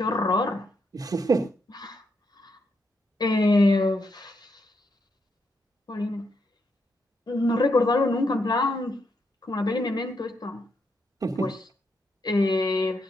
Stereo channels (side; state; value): both; normal; correlation 0.80